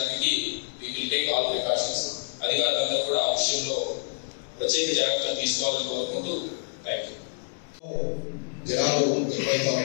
we will take all precautions. అధికారులందరూ కూడా ఆ విషయంలో ప్రత్యేక జాగ్రత్తలు తీసుకోవాలని కోరుకుంటూ థ్యాంక్ యూ. జనాలు ఎక్కువైతే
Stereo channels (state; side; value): silent; right; digital silence